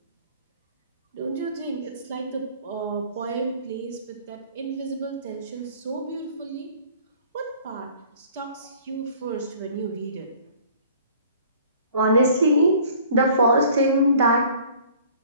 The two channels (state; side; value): inverted; both; correlation -0.52